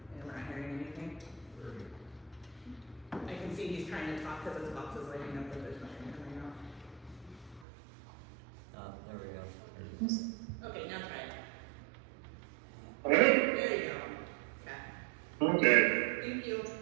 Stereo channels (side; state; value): left; drops out; at 7.7 s